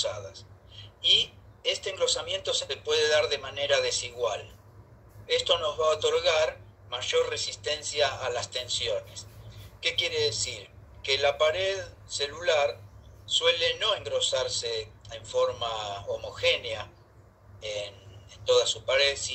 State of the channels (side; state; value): both; identical; correlation 1.00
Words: Y este engrosamiento se puede dar de manera desigual. Esto nos va a otorgar mayor resistencia a las tensiones. ¿Qué quiere decir? Que la pared celular suele no engrosarse en forma homogénea en toda su pared,